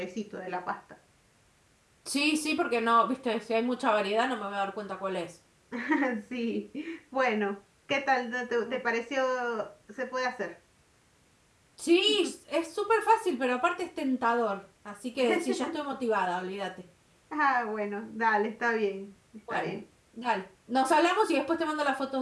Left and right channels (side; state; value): both; identical; correlation 1.00